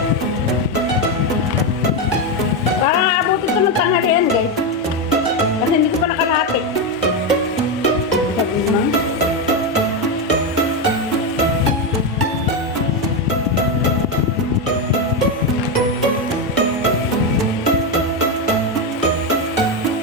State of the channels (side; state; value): both; normal; correlation 0.09